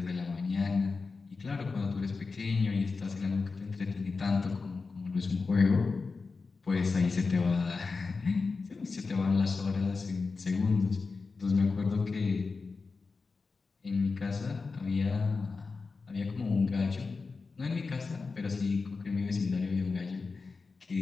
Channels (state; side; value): quieter; right; 4.3 dB